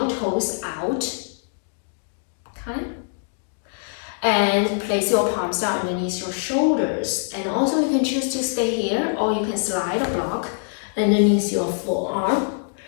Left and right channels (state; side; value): silent; right; digital silence